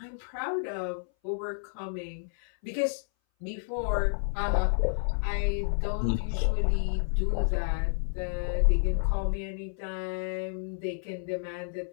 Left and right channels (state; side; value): silent; right; 58 dB below the other